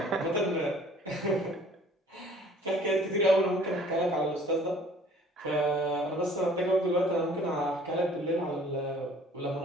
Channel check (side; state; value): both; normal; correlation 0.53